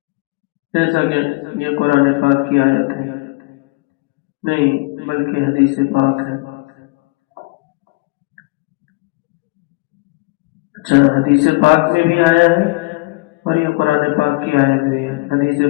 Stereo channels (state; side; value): quieter; right; 24.6 dB